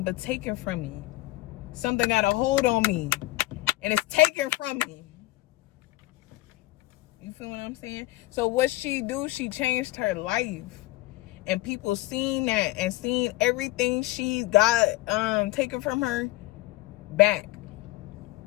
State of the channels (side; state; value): right; quieter; 19.3 dB